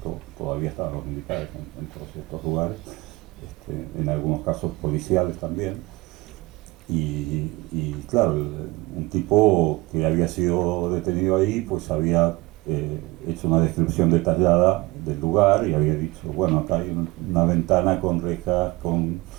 todavía estaban los militares en todos estos lugares, en algunos casos policiales también, y claro, un tipo que había sido detenido ahí pues había hecho una descripción detallada del lugar y había dicho, bueno, acá hay una ventana con rejas, con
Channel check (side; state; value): left; quieter; 22.0 dB